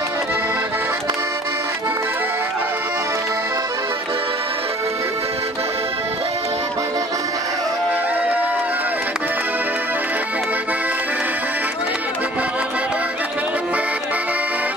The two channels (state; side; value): normal; both; correlation 0.50